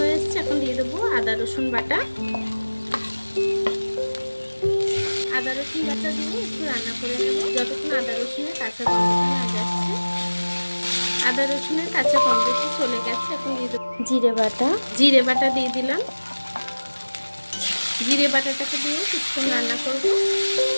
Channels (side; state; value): both; inverted; correlation -1.00